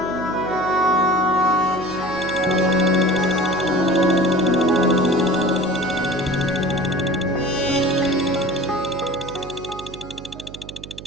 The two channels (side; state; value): right; noise; hum, 15 dB below the sound